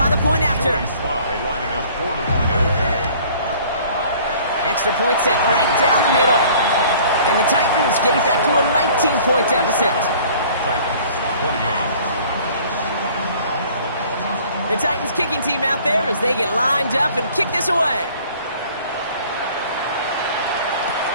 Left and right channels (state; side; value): inverted; both; correlation -0.52